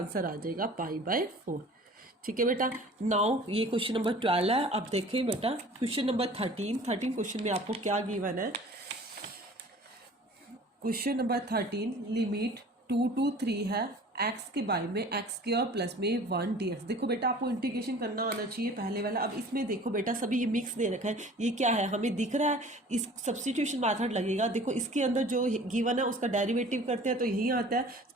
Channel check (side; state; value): both; normal; correlation 0.46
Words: आ जाएगा π/4। ठीक है बेटा। नाउ ये क्वेश्चन नंबर 12 है। अब देखें बेटा क्वेश्चन नंबर 13 क्वेश्चन में आपको क्या गिवन है, क्वेश्चन नंबर 13 लिमिट 2 to 3 है एक्स के बाय में एक्स स्क्वायर प्लस में 1 dx। देखो बेटा आपको इंटीग्रेशन करना आना चाहिए पहले वाला। अब इसमें देखो बेटा सभी ये मिक्स दे रखा है, ये क्या है हमें दिख रहा है, इस सब्स्टिट्यूशन मेथड लगेगा। देखो इसके अंदर जो गिवन है उसका डेरिवेटिव करते हैं तो यही आता है,